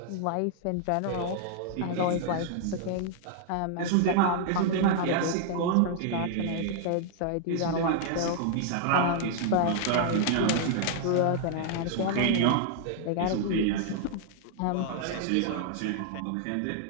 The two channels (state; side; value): different; both; correlation -0.01